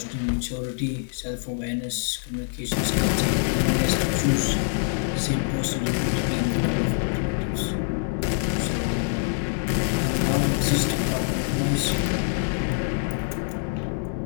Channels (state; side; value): silent; right; digital silence